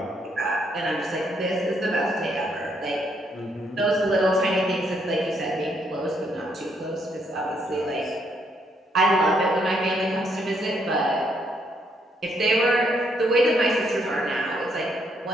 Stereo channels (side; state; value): both; normal; correlation 0.73